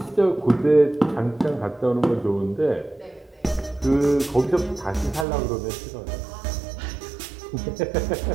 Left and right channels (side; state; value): left; drops out; at 5.2 s